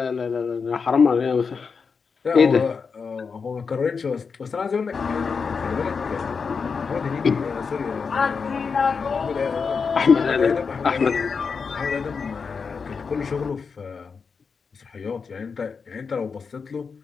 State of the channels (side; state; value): right; quieter; 5.4 dB